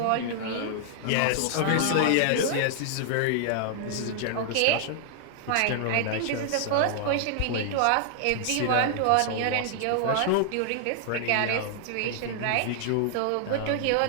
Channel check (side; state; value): both; different; correlation -0.01